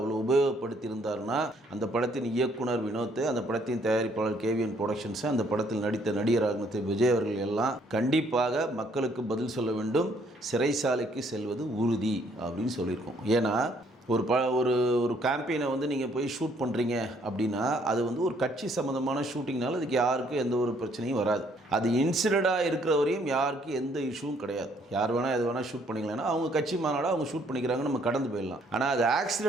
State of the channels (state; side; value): normal; both; correlation 0.66